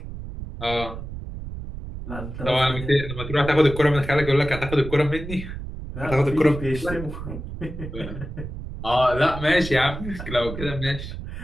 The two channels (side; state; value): right; noise; rumble, 9 dB below the sound